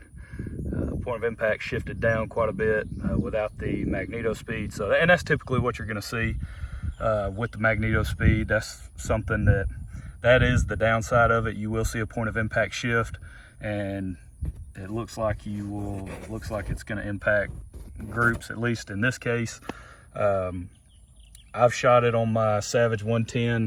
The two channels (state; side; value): identical; both; correlation 1.00